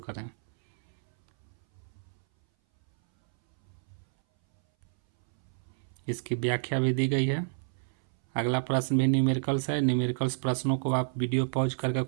इसकी व्याख्या भी दी गई है। अगला प्रश्न भी न्यूमेरिकल्स है। न्यूमेरिकल्स प्रश्नों को आप वीडियो पॉज करके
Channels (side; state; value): left; silent; 58 dB below the other